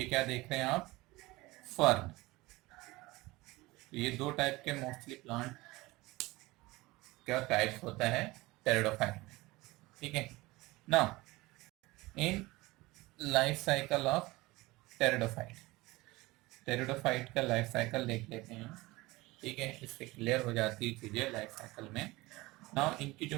क्या देख रहे हैं आप, फर्न। तो ये दो टाइप के मोस्टली प्लांट क्या टाइप्स होता है टेरिडोफाइट में। ठीक है, now in life cycle of pteridophyte, pteridophyte का लाइफ साइकिल देख लेते हैं। ठीक है, इससे क्लियर हो जाती है चीजें लाइफ साइकिल में। नाउ इनकी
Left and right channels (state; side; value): quieter; left; 21.0 dB